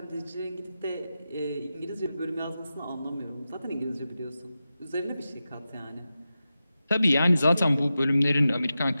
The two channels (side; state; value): both; inverted; correlation -0.92